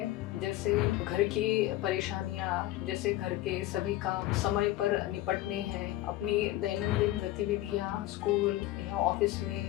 जैसे घर की परेशानियाँ, जैसे घर के सभी काम समय पर निपटने हैं, अपनी दैनंदिन गतिविधियाँ, स्कूल या ऑफिस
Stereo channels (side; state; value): right; quieter; 15.7 dB